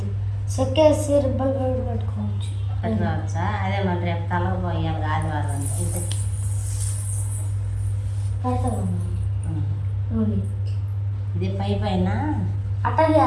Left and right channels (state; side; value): identical; both; correlation 1.00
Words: సెక్కేసి రబ్బలు పెట్టుకోవచ్చు. పెట్టుకోవచ్చా? అదే మరి రేపు తలకు పోయాలి ఆదివారం అంటే పెడతామమ్మా. ఇది పైన అట్టగే